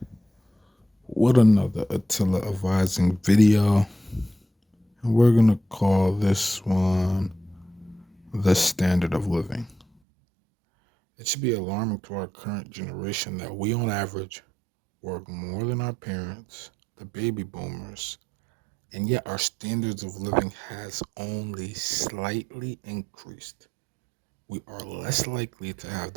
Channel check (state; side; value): drops out; left; at 9.9 s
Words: with another Attila advising video. And we're gonna call this one The Standard of Living. It should be alarming to our current generation that we, on average, work more than our parents, the baby boomers, and yet our standards of living has only slightly increased. We are less likely to have